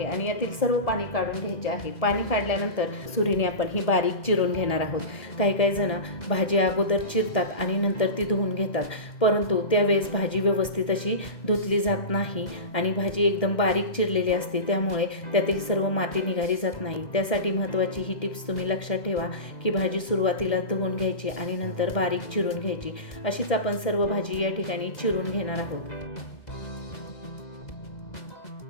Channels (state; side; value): late; right; 1.8 ms